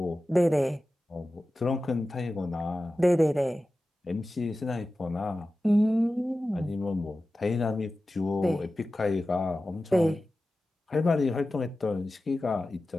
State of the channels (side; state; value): both; normal; correlation 0.94